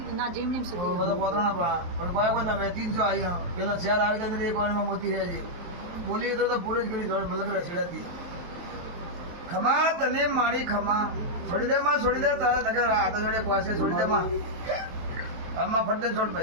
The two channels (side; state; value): left; late; 23 ms